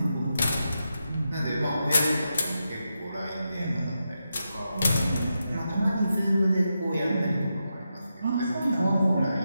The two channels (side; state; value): both; inverted; correlation -0.87